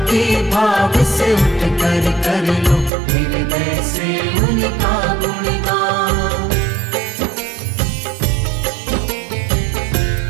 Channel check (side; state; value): left; drops out; at 2.9 s